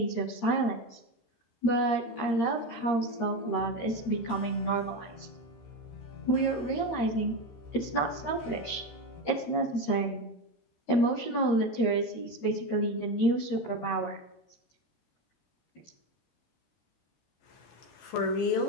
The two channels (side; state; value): right; late; 13 ms